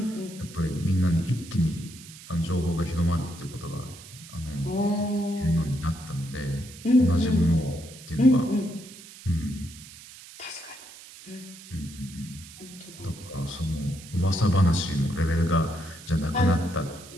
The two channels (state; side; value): noise; right; hiss, 17 dB below the sound